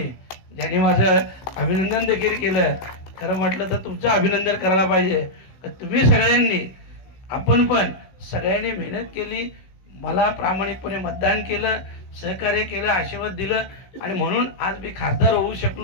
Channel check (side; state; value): right; late; 16 ms